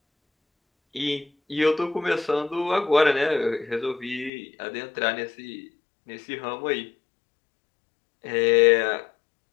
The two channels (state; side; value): drops out; right; at 4.3 s